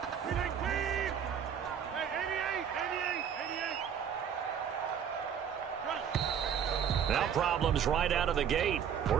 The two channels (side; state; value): left; quieter; 8.2 dB